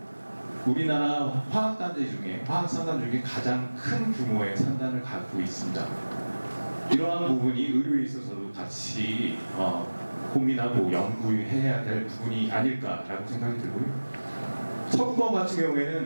우리나라 화학산단 중에 가장 큰 규모의 산단을 갖고 있습니다. 이러한 부분이 의료에 있어서도 같이 고민하고 연구해야 될 부분이 아닐까라고 생각이 들고요. 서부권 같은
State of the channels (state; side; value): inverted; both; correlation -1.00